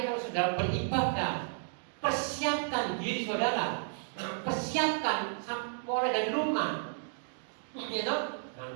kalau saudara beribadah, persiapkan diri saudara. Persiapkan mulai dari rumah, ya toh, dengan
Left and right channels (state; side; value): silent; left; digital silence